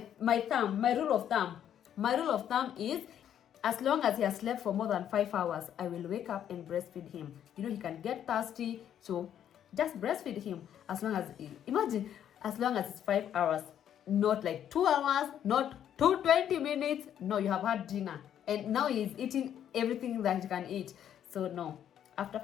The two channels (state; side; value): quieter; right; 9.9 dB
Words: rule of thumb is, as long as he has slept for more than 5 hours, I will wake up and breastfeed him. You know, he can get thirsty, so just breastfeed him. As long as it's 5 hours, not like 2 hours, not 20 minutes. No, you have had dinner, and now he's eating everything that he can eat. So no, after